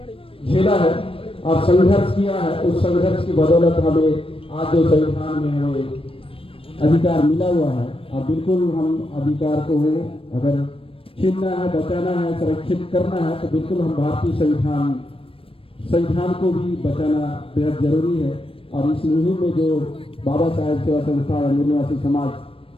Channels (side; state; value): right; late; 0.27 ms